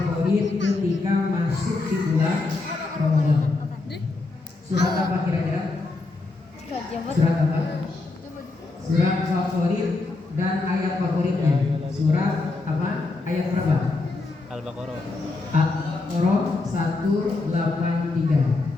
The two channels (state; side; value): quieter; right; 3.5 dB